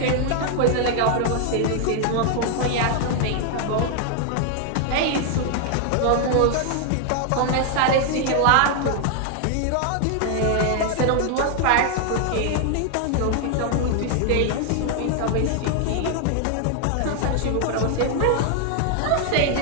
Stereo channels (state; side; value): different; both; correlation 0.00